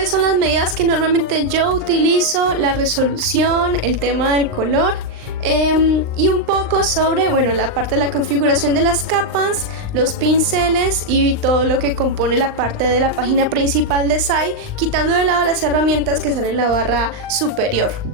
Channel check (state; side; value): late; left; 39 ms